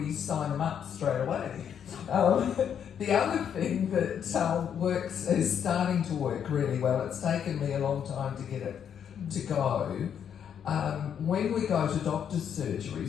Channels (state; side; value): quieter; right; 8.4 dB